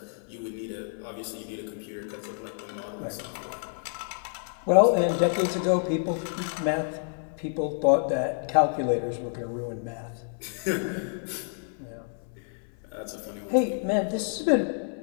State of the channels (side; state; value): right; silent; 59 dB below the other